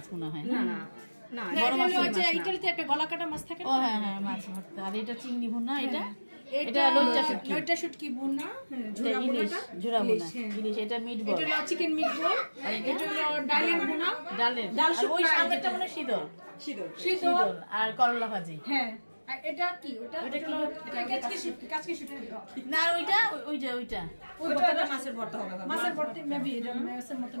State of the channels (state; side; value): inverted; both; correlation -1.00